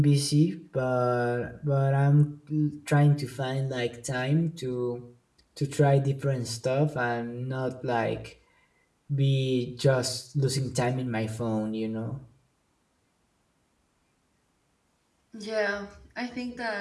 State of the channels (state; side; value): identical; both; correlation 1.00